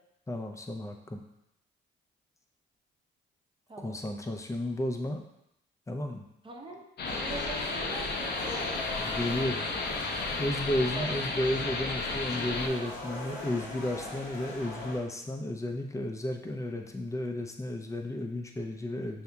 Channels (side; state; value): both; normal; correlation 0.62